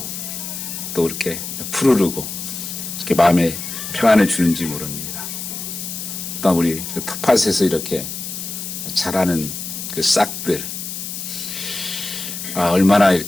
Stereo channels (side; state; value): left; noise; hiss, 7 dB below the sound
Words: 또 이렇게 푸르르고 이렇게 마음에 평안을 주는지 모릅니다. 또 우리 그 텃밭에서 이렇게 자라는 그 싹들, 얼마나